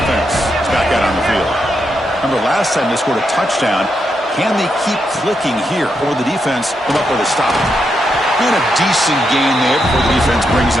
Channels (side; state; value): both; normal; correlation 0.82